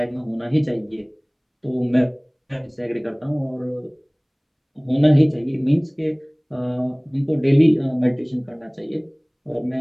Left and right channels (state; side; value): identical; both; correlation 1.00